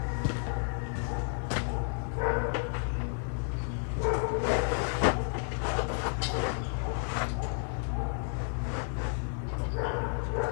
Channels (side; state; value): right; silent; 57 dB below the other